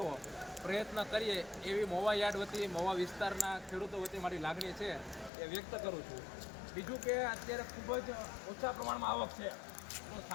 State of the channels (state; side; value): drops out; right; at 5.3 s